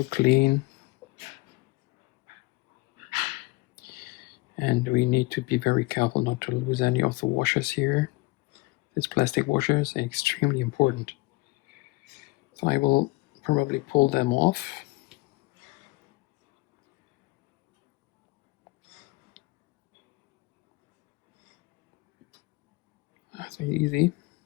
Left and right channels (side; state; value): right; quieter; 23.3 dB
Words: clean. And we need to be very careful not to lose any of the washers here. These plastic washers are extremely important. So I will probably pull them off. That's really easy.